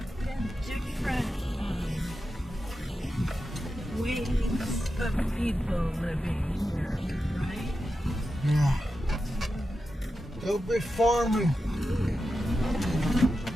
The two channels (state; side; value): normal; both; correlation 0.90